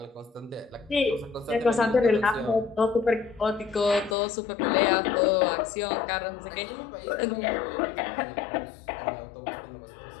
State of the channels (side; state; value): right; drops out; at 4.2 s